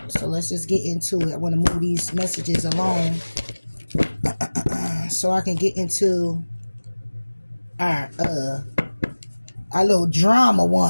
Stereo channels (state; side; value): inverted; both; correlation -1.00